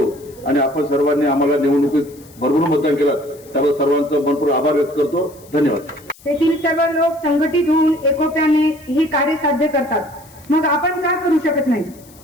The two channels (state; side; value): noise; left; hiss, 25 dB below the sound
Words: आणि आपण सर्वांनी आम्हाला निवडणुकीत भरभरून मतदान केलं त्याबद्दल सर्वांचं मनपूर्वक आभार व्यक्त करतो. धन्यवाद. तेथील सर्व लोक संघटित होऊन एकोप्याने ही कार्य साध्य करतात. मग आपण का करू शकत नाही?